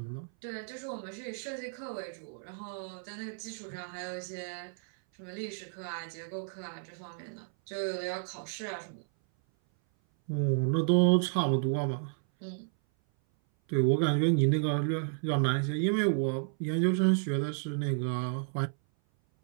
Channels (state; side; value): silent; left; 56 dB below the other